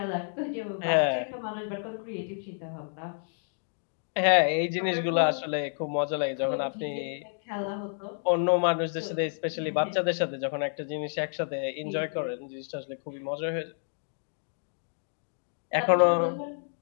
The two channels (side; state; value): right; silent; digital silence